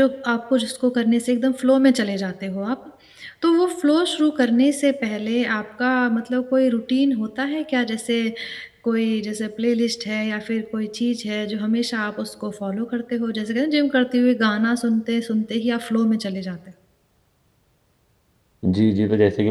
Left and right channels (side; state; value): both; identical; correlation 1.00